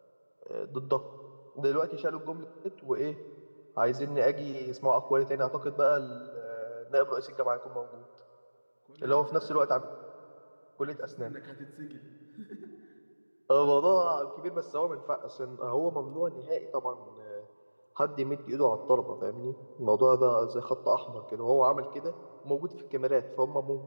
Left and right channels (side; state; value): both; inverted; correlation -1.00